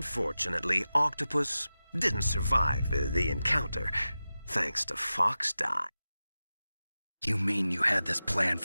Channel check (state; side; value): inverted; both; correlation -0.94